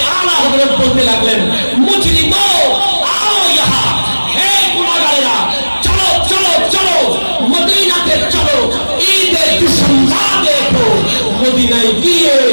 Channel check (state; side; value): inverted; both; correlation -1.00